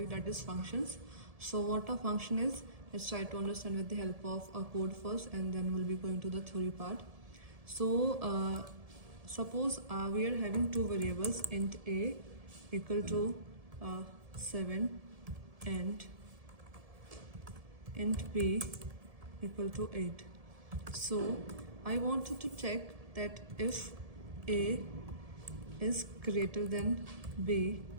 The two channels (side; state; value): left; late; 1.7 ms